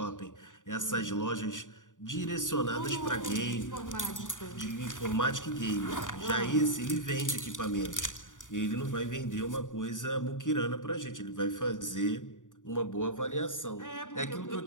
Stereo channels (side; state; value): right; late; 0.87 ms